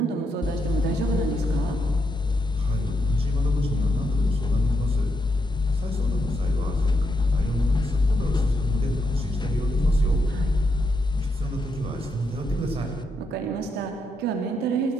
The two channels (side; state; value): both; normal; correlation 0.81